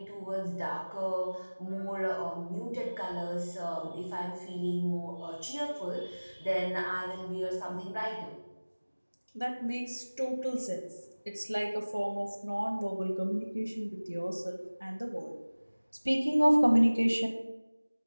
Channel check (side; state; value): both; inverted; correlation -1.00